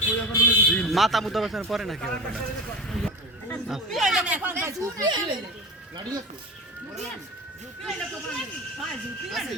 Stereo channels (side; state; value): both; normal; correlation 0.30